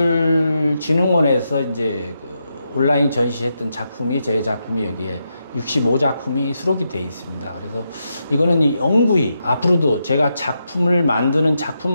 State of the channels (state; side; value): inverted; both; correlation -0.84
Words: 이제 그 온라인 전시했던 작품이 제 작품이 여기에 65작품이 수록이 되어 있습니다. 그래서 이거는 이 영구히 앞으로도 제가 작품을 만드는